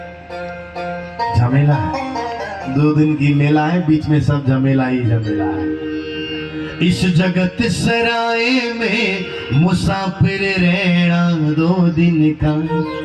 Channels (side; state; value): both; identical; correlation 1.00